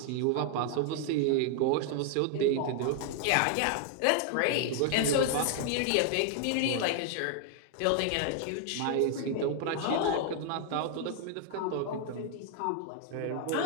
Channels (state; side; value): different; both; correlation 0.00